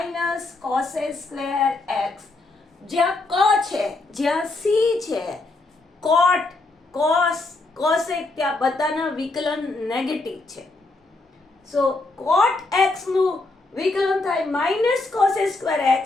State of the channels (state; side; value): quieter; right; 3.2 dB